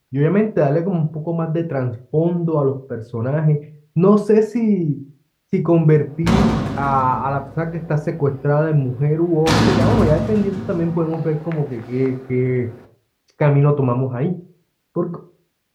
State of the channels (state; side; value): identical; both; correlation 1.00